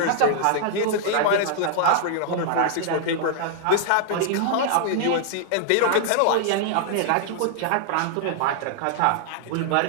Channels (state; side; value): different; both; correlation -0.01